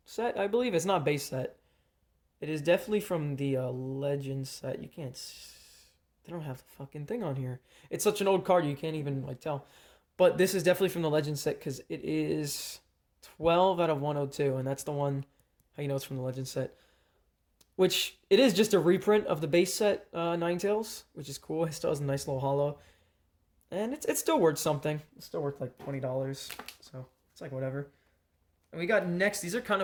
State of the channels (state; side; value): identical; both; correlation 1.00